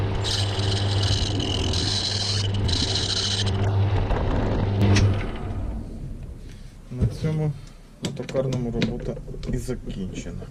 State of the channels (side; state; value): both; identical; correlation 1.00